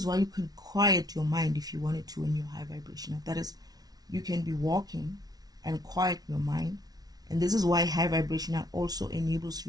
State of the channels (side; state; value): left; late; 0.19 ms